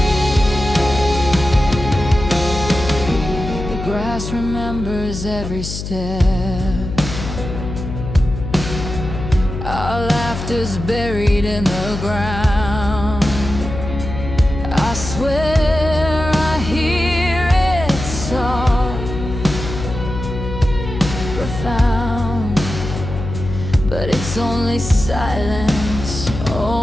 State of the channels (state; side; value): noise; left; hum, 7 dB below the sound